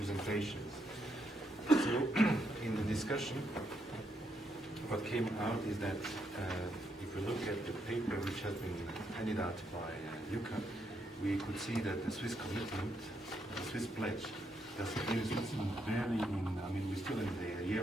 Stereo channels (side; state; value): both; normal; correlation 0.78